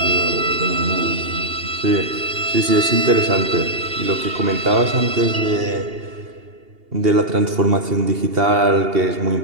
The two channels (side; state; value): left; late; 2.8 ms